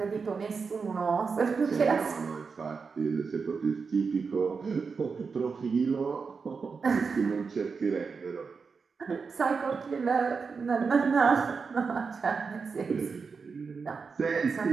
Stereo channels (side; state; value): left; quieter; 5.2 dB